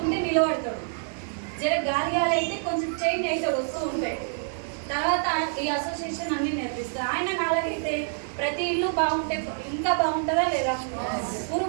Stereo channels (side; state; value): left; silent; digital silence